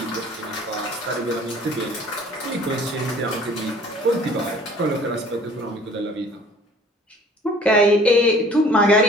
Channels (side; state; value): both; normal; correlation 0.51